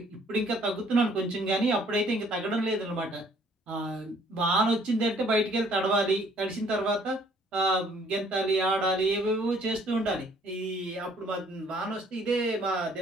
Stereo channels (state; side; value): normal; both; correlation 0.60